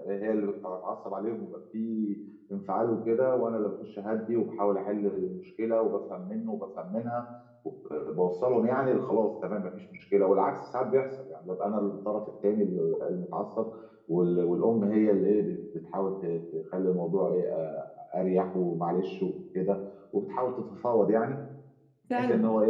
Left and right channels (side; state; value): both; identical; correlation 1.00